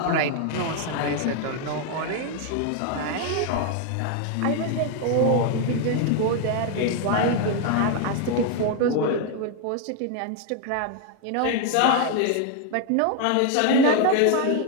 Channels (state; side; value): different; both; correlation 0.01